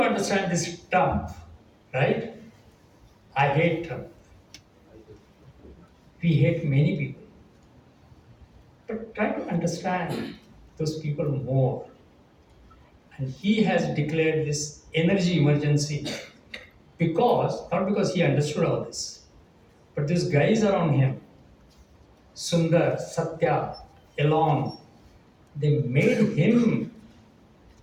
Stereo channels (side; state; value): both; identical; correlation 1.00